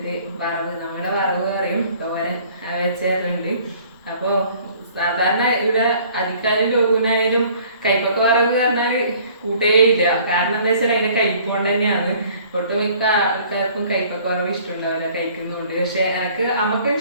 വറവ്, നമ്മുടെ വറവ് പറയും, തോരൻ വെച്ചേരുന്നുണ്ട്. അപ്പൊ സാധാരണ ഇവിടെ അധികാരം ലോകനായാലും കൈപ്പൊക്കെ വറവ് പറഞ്ഞാല് കൂട്ടേയില്ല. കാരണം എന്താ വെച്ചാൽ അതിന്റെ കൈപ്പോണ്ട് തന്നെയാണ്. ഒട്ടുമിക്ക ആൾക്കാർക്കും കൈപ്പൊക്കെ വറവ് ഇഷ്ടമുണ്ടാവില്ല, കഴിക്കുന്നുണ്ട്. പക്ഷെ എനിക്ക് അമ്മക്ക്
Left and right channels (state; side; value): inverted; both; correlation -0.54